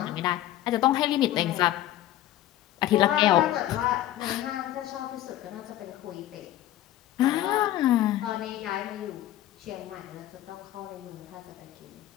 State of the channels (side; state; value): right; quieter; 13.7 dB